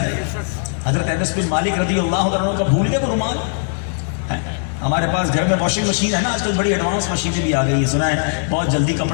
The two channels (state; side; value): silent; right; digital silence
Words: حضرت انس بن مالک رضی اللہ عنہ کا بھول گئے وہ رومال؟ ہمارے پاس گھر میں واشنگ مشین ہے نا، آج کل بڑی ایڈوانس مشینیں بھی آ گئی ہیں، سنا ہے بہت جلدی